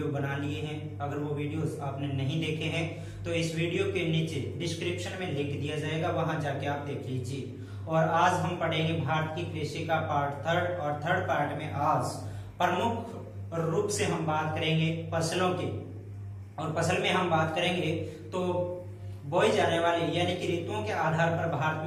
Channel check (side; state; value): both; identical; correlation 1.00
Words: बना लिए हैं। अगर वो वीडियोस आपने नहीं देखे हैं तो इस वीडियो के नीचे डिस्क्रिप्शन में लिंक दिया जाएगा, वहां जाके आप देख लीजिए। और आज हम पढ़ेंगे भारत की कृषि का पार्ट 3 और 3rd पार्ट में आज प्रमुख रूप से हम बात करेंगे फसलों की। और फसल में हम बात करेंगे तो बोई जाने वाली, यानी कि ऋतुओं के आधार पर भारत